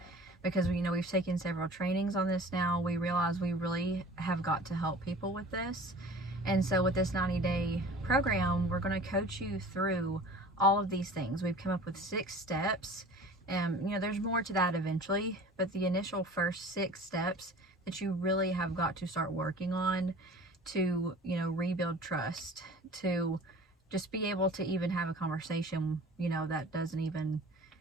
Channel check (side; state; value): both; normal; correlation 0.43